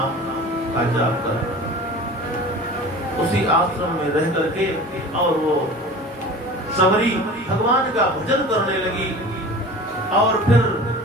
का जाप कर। उसी आश्रम में रह करके और वो सबरी भगवान का भजन करने लगी। और फिर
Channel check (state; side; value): normal; both; correlation 0.38